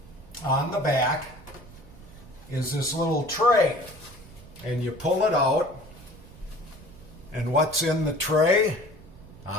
on the back is this little tray. And you pull it out, and what's in the tray?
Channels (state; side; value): noise; right; rumble, 20 dB below the sound